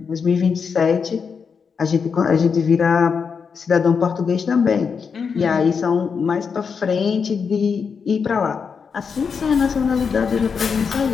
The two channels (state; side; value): quieter; right; 5.9 dB